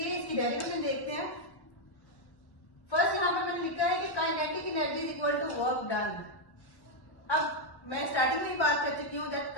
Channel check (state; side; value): late; right; 1.1 ms